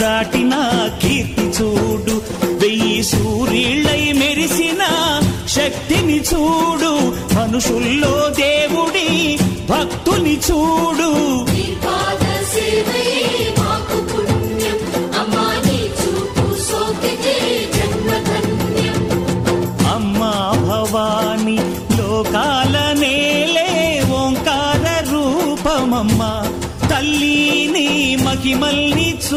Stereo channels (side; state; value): both; identical; correlation 1.00